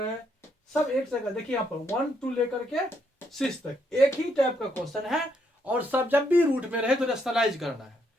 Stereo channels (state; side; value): normal; both; correlation 0.75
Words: सब एक जगह। देखिए यहाँ पर 1 2 लेकर के 6 तक एक ही टाइप का क्वेश्चन है, और सब जब भी रूट में रहे तो रेशनलाइज करना है।